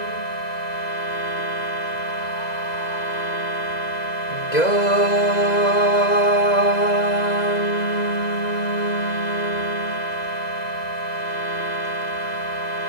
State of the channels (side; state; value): right; late; 2.0 ms